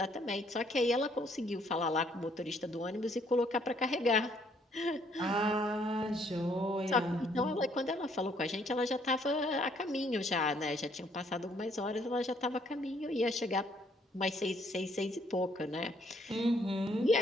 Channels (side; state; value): both; normal; correlation 0.66